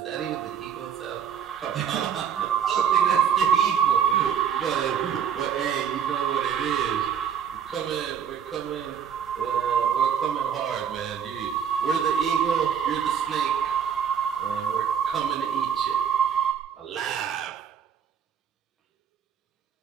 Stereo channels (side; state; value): left; quieter; 8.1 dB